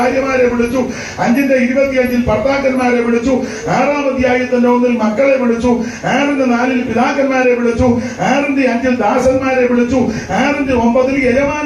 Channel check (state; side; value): identical; both; correlation 1.00